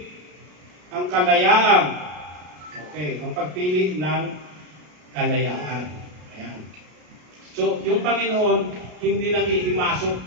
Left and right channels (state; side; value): late; left; 33 ms